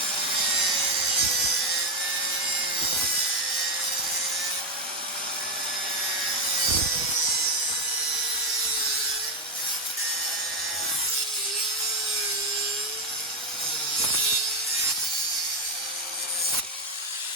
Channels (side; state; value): both; normal; correlation 0.06